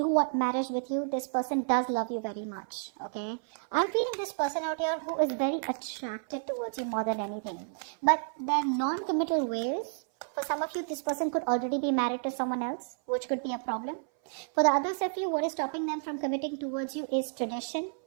want marriage with you. This person does love you very much, okay? I'm feeling this person out here who is very attracted towards you more than anything. But their non-committal ways, for some of you, this person could already be married to someone else, which could be a problem. For the others of you, what is stopping them from committing towards you is tradition,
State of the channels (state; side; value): silent; left; 57 dB below the other